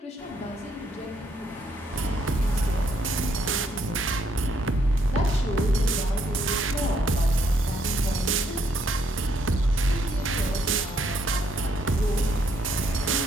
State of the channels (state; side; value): normal; both; correlation 0.71